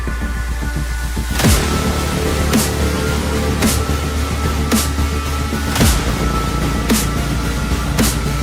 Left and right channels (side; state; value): both; identical; correlation 1.00